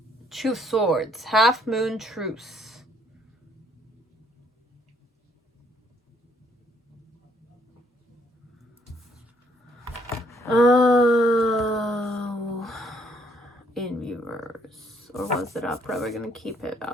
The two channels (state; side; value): normal; both; correlation 0.67